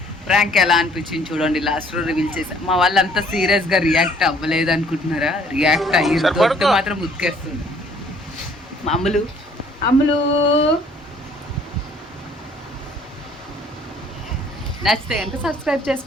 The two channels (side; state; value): both; normal; correlation 0.59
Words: ప్రాంక్ ఎలా అనిపించింది చూడండి. లాస్ట్ లో రివీల్ చేసా. మా వాళ్ళు అంత సీరియస్ గా రియాక్ట్ అవ్వలేదు అనుకుంటున్నారా? రియాక్ట్ అయ్యి దొరికి మాత్రం ఉతికేస్తుంది. అమ్ములు అమ్ములు నచ్చితే కనుక సబ్స్క్రైబ్